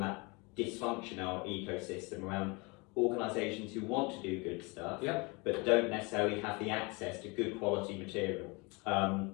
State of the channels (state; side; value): quieter; right; 28.1 dB